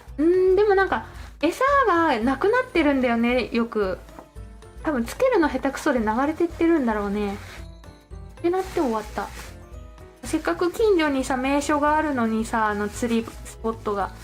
でもなんか餌がなくなってるんだよね、よく。多分つけるの下手くそで流れてってるんだろうねってなって終わった。せっかく近所にさ名所があるのにさ、釣りスポットが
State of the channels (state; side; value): identical; both; correlation 1.00